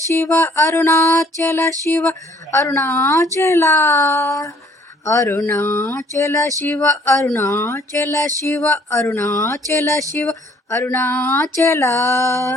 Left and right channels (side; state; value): both; normal; correlation 0.60